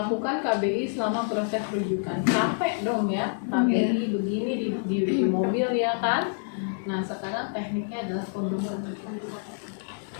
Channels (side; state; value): right; silent; digital silence